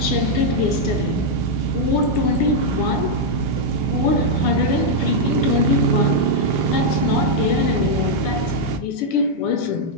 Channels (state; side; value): normal; both; correlation -0.03